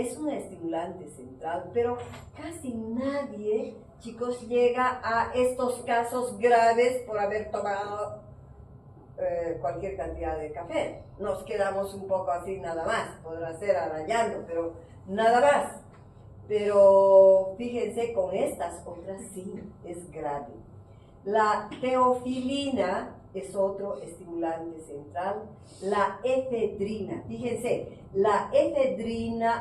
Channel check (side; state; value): both; identical; correlation 1.00